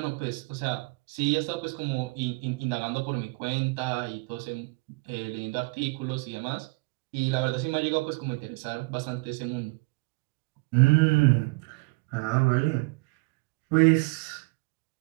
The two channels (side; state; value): left; quieter; 28.2 dB